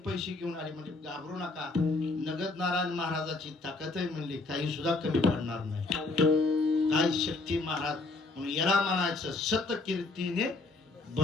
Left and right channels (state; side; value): quieter; right; 3.5 dB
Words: घेऊन आले, म्हणजे घाबरू नका. नगद नारायण महाराजाची ताकद आहे म्हणली, काही सुद्धा कमी पडणार नाही. काय शक्ती महाराज. म्हणून याला म्हणायचं सत कीर्तीने